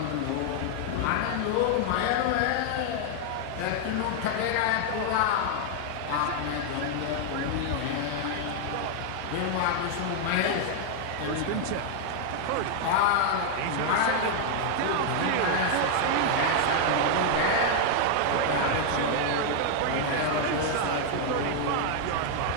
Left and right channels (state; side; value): different; both; correlation 0.00